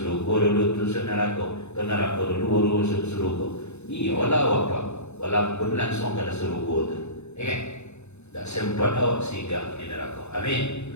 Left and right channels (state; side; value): late; right; 0.81 ms